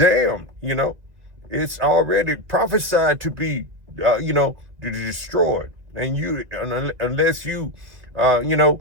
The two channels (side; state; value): left; late; 2.0 ms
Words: It's already prophesied to be, destroyed. And unless you,